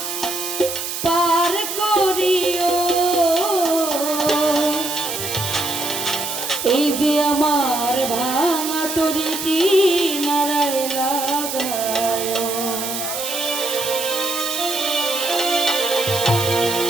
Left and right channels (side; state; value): right; noise; hiss, 5 dB below the sound